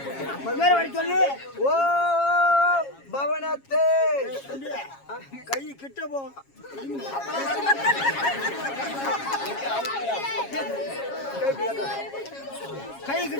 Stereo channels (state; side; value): late; right; 7.3 ms